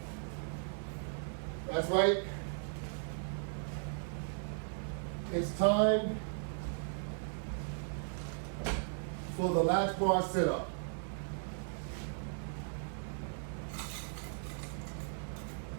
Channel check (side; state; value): left; silent; digital silence